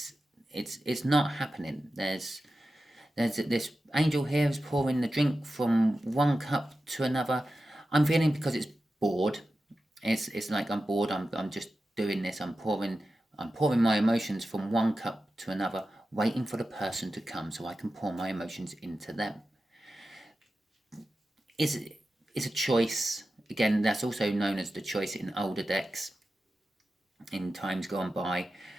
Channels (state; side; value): normal; both; correlation 0.92